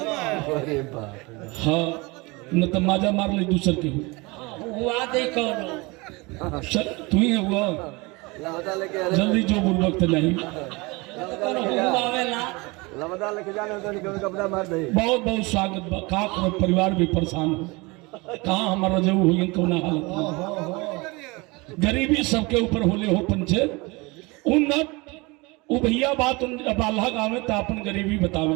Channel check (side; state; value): left; quieter; 25.4 dB